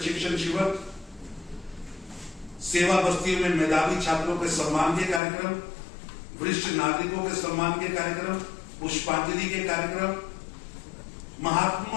शिविर, सेवा बस्तियों में मेधावी छात्रों के सम्मान के कार्यक्रम, वरिष्ठ नागरिकों के सम्मान के कार्यक्रम, पुष्पांजलि के कार्यक्रम,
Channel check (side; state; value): right; drops out; at 5.2 s